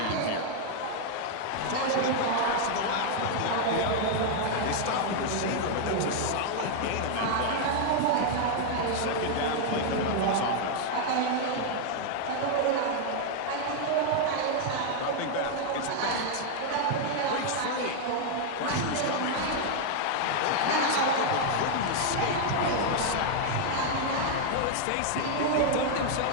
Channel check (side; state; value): both; different; correlation 0.00